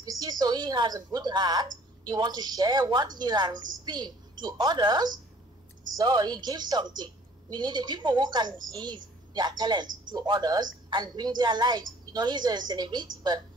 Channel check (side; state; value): both; normal; correlation 0.54